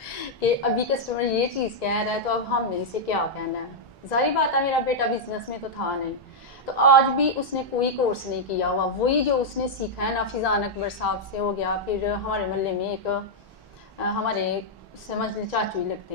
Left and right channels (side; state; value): both; normal; correlation -0.04